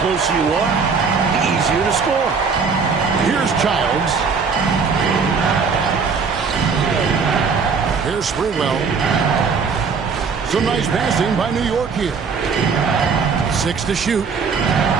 closer you are, the easier to score. Here's Childs. Here's Sprewell. Some nice passing by New York here. 6 to shoot.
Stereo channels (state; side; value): quieter; left; 5.4 dB